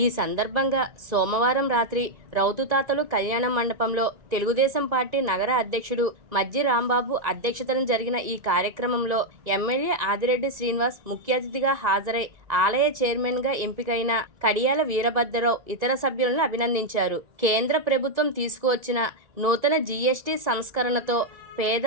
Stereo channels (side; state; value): left; late; 2.0 ms